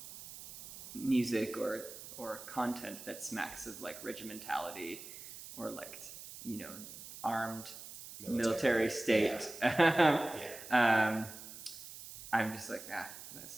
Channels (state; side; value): noise; right; hiss, 13 dB below the sound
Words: music or content that smacks of like regimentality or like, armed military state. Yeah. I'm just like,